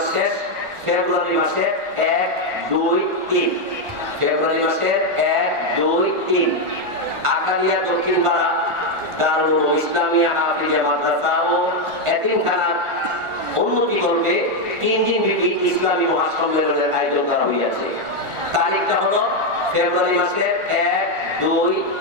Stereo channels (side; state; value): left; late; 1.5 ms